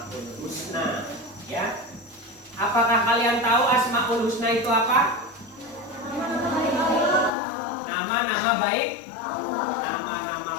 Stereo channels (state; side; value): drops out; right; at 7.3 s